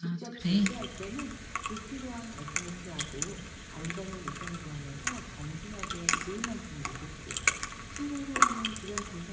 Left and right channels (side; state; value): both; identical; correlation 1.00